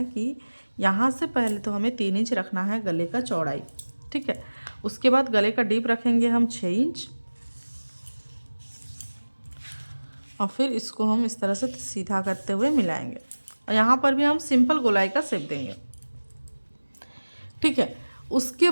कि यहाँ से पहले तो हमें 3 इंच रखना है गले का चौड़ाई। ठीक है, उसके बाद गले का डीप रखेंगे हम 6 इंच और फिर इसको हम इस तरह से सीधा करते हुए मिलाएंगे और यहाँ पर भी हम सिंपल गोलाई का शेप देंगे। ठीक है, उसके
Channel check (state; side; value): inverted; both; correlation -1.00